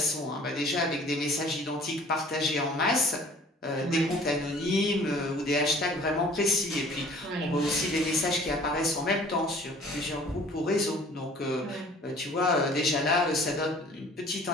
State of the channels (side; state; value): both; normal; correlation 0.51